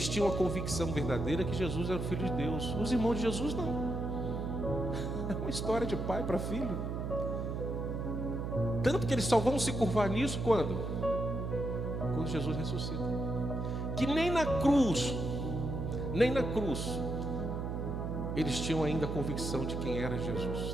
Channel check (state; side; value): noise; right; hum, 3 dB below the sound